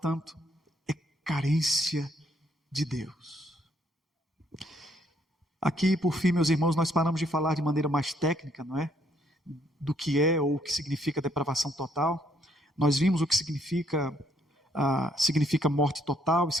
é carência de Deus. Aqui, por fim, meus irmãos, nós paramos de falar de maneira mais técnica, não é? Do que é ou o que significa depravação total. Nós vimos o que significa morte total,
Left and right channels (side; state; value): both; normal; correlation 0.68